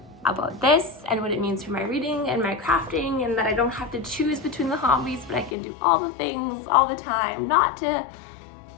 about this and what it means for my reading and my crafting, and that I don't have to choose between the hobbies, but I can do all the things all the time. Not to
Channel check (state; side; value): drops out; right; at 5.6 s